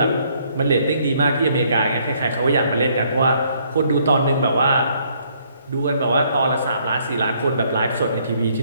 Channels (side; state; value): both; inverted; correlation -0.66